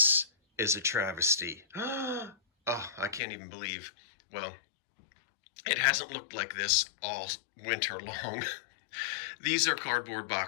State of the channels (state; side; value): drops out; right; at 3.2 s